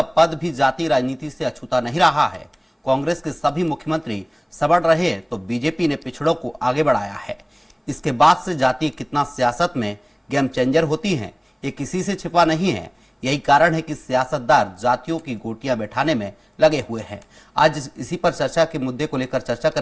पद भी जाति राजनीति से अछूता नहीं रहा है। कांग्रेस के सभी मुख्यमंत्री सबड़ रहे तो बीजेपी ने पिछड़ों को आगे बढ़ाया है। इसके बाद से जाति कितना सियासत में गेम चेंजर होती है, ये किसी से छिपा नहीं है। यही कारण है कि सियासतदार जातियों की गोटियां बैठाने में लगे हुए हैं। आज इसी पर चर्चा के मुद्दे को लेकर चर्चा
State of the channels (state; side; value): identical; both; correlation 1.00